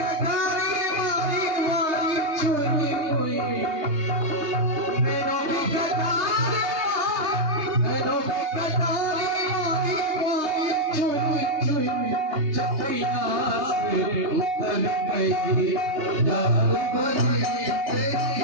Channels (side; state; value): left; late; 3.3 ms